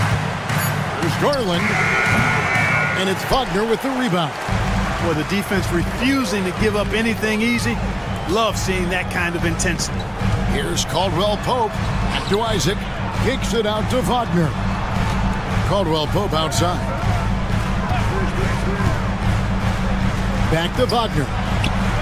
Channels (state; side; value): identical; both; correlation 1.00